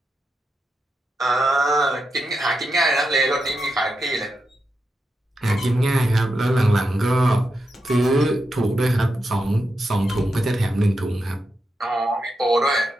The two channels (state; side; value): normal; both; correlation 0.86